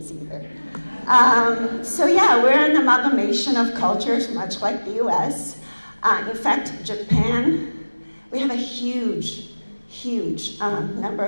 either. So yeah, we're an amalgamation of cultures, much like the US. In fact, Japan, we have a huge number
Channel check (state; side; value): inverted; both; correlation -1.00